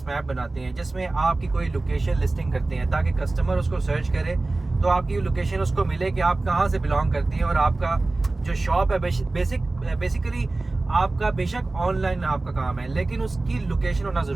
मैप बनाते हैं, जिसमें आपकी कोई लोकेशन लिस्टिंग करते हैं ताकि कस्टमर उसको सर्च करे तो आपकी लोकेशन उसको मिले कि आप कहाँ से बिलोंग करती हैं और आपका जो शॉप है बेसिकली आपका बेशक ऑनलाइन आपका काम है, लेकिन उसकी लोकेशन होना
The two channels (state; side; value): quieter; left; 3.2 dB